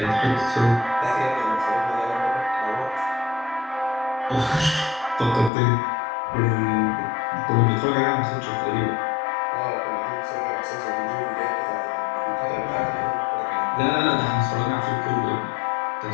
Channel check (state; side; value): drops out; right; at 5.5 s